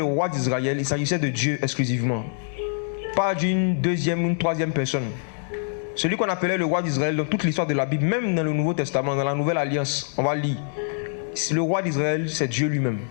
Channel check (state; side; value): silent; right; digital silence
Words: roi d'Israël, il s'agissait de Dieu exclusivement. Pas d'une deuxième ou une troisième personne. Celui qu'on appelait le roi d'Israël dans toute l'histoire de la Bible, même dans le Nouveau Testament, dans la Nouvelle Alliance, on va lire. Le roi d'Israël, c'est Dieu lui-même.